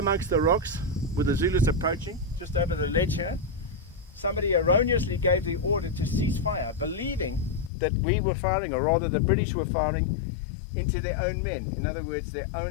the rocks, with the Zulus approaching, just over the ledge here, somebody erroneously gave the order to cease fire, believing that we were firing, or rather the British were firing, into their own men. In other words, their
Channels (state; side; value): drops out; right; at 7.7 s